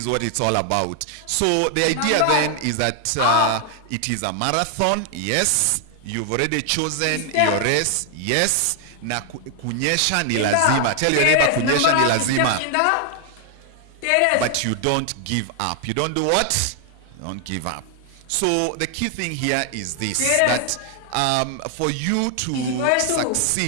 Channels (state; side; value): different; both; correlation 0.00